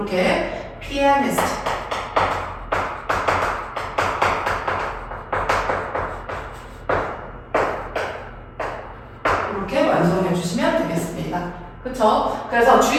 pianist 이렇게 완성해 주시면 되겠습니다. 그쵸? 그래서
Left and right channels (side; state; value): both; identical; correlation 1.00